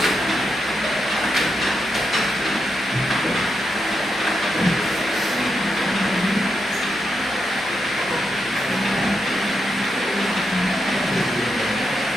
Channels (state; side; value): normal; both; correlation 0.84